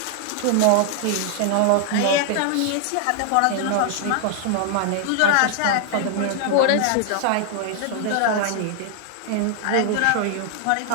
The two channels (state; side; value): different; both; correlation 0.00